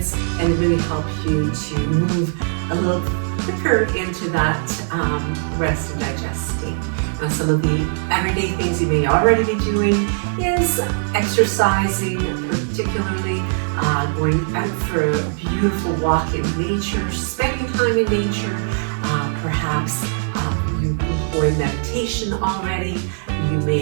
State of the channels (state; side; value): silent; left; digital silence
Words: and really help you to move a little quicker into that rest and digest state. Now, some of the everyday things you may already be doing is exercising, particularly going out for a beautiful walk in nature, spending time in nature, perhaps you employ meditation already. You